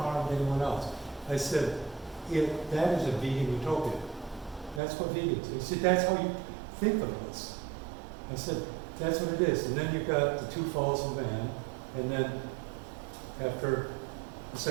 anyone else. I said, that is a vegan utopia. That's what vegans are. He said, that's how you think of us. I said, that's what it is. And then you've got the two falls of man, and then after the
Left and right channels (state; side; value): drops out; left; at 4.8 s